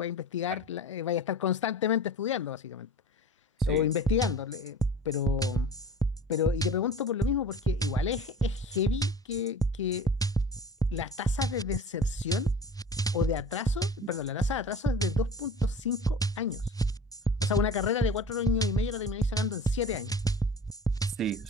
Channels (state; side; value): normal; both; correlation 0.39